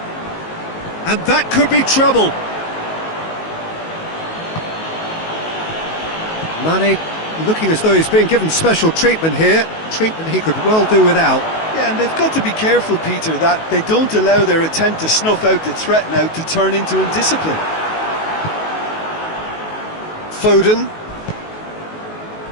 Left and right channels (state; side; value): late; right; 19 ms